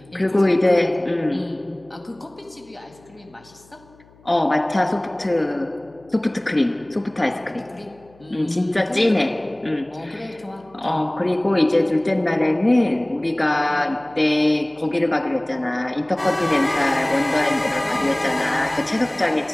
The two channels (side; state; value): left; noise; hum, 28 dB below the sound